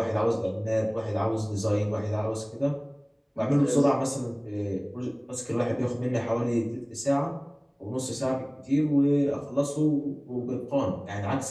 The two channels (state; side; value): identical; both; correlation 1.00